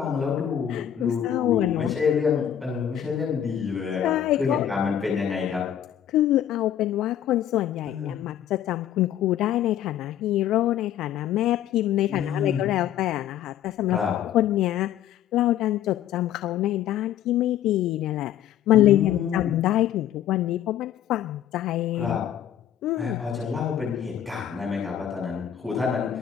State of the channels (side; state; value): right; quieter; 10.5 dB